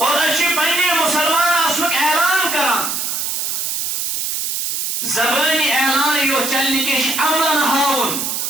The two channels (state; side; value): noise; right; hiss, 1 dB below the sound